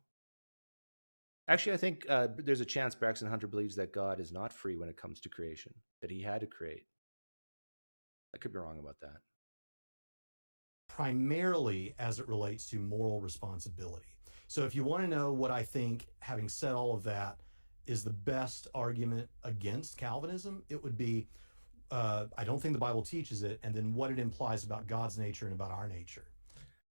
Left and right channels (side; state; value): both; inverted; correlation -1.00